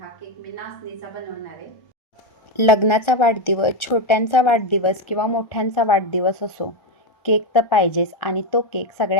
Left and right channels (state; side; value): late; right; 1.4 ms